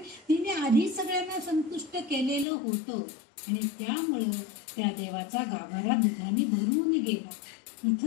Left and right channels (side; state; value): right; drops out; at 2.5 s